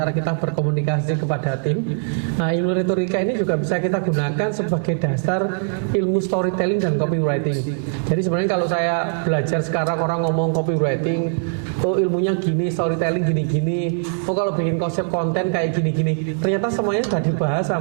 kita berkomunikasi kepada tim. Nah, ilmu retorika ini juga bisa kita gunakan sebagai dasar ilmu storytelling dan copywriting. Jadi sebenarnya kalau saya belajar sekarang orang ngomong copywriting, oh ilmunya gini, storytelling gini-gini, oh kalau bikin konsep konten kayak gini-gini, ternyata semuanya sudah dibahas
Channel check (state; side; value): silent; left; digital silence